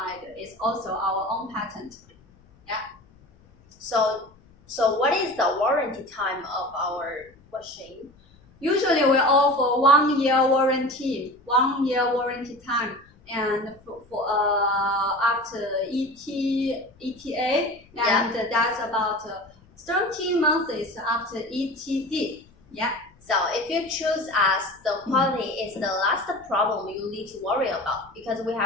It's also our own patent. So what is the warranty time of our machine? Usually we offer 1 year warranty, 1 year warranty time, and for after ETA, and that's about 13 months after ETD. Yeah. So if you choose us, the quality is the last problem you need to worry about, because we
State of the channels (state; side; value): noise; left; rumble, 29 dB below the sound